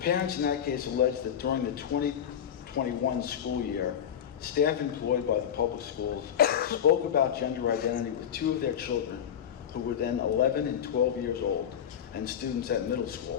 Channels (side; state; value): right; quieter; 9.0 dB